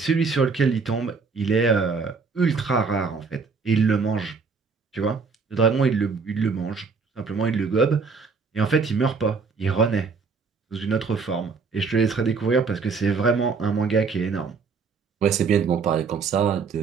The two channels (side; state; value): left; quieter; 5.0 dB